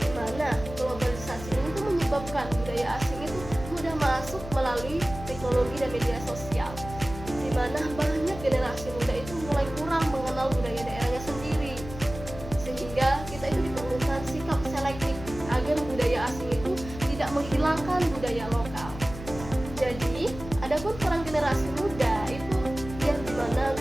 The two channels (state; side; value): noise; left; hum, 12 dB below the sound